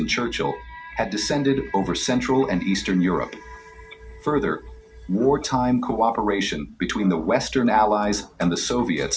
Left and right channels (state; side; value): identical; both; correlation 1.00